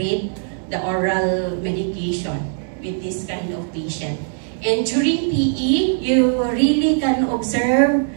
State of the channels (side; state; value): left; silent; digital silence